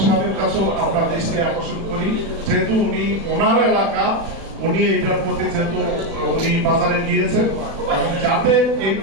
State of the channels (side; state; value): left; late; 36 ms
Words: সাহেবের কাছেও আমরা দৃষ্টি আকর্ষণ করি, যেহেতু উনি ওনার এলাকা, উনি এটার প্রতি যেহেতু উনি বাজারে গিয়েছেন এবং যাতে এই